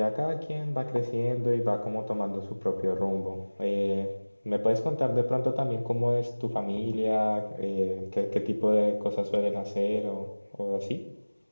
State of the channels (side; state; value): both; inverted; correlation -1.00